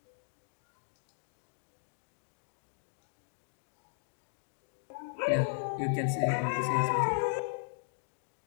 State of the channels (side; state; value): right; silent; digital silence